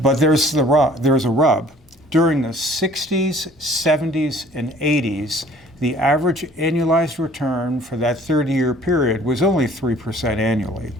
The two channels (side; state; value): both; normal; correlation 0.53